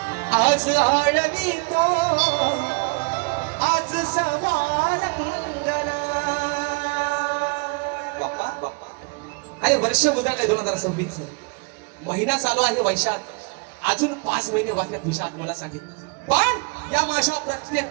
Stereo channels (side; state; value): left; quieter; 32.0 dB